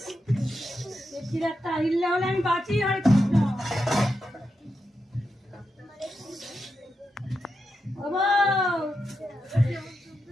পেটকির একটা হিল্লে হলে আমি বাঁচি। হরে কৃষ্ণ।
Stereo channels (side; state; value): both; normal; correlation 0.86